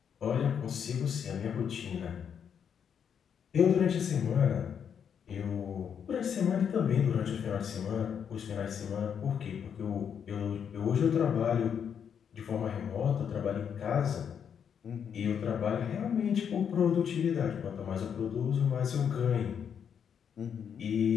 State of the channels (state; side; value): quieter; right; 7.8 dB